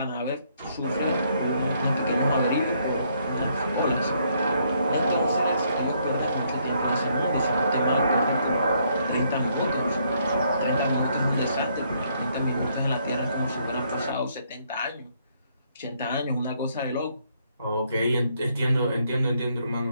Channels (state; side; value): inverted; both; correlation -0.71